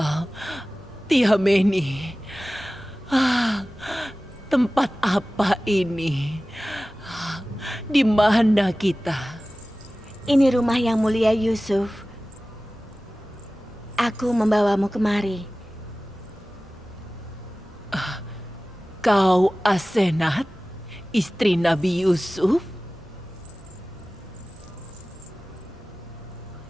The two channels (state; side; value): normal; both; correlation 0.97